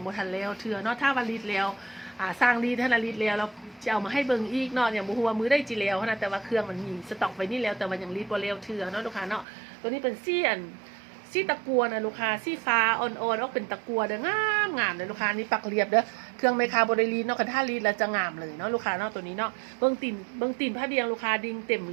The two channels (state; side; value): drops out; left; at 9.5 s